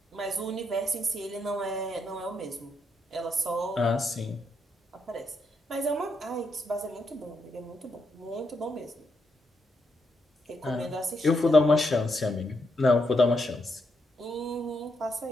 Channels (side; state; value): both; normal; correlation 0.79